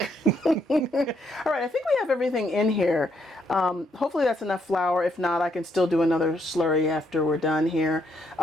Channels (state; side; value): normal; both; correlation 0.74